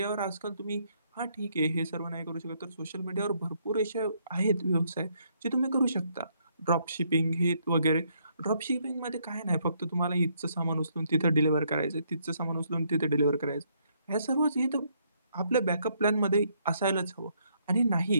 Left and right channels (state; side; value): inverted; both; correlation -0.71